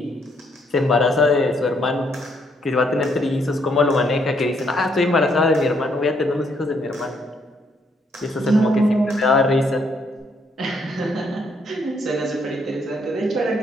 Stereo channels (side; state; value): both; normal; correlation 0.71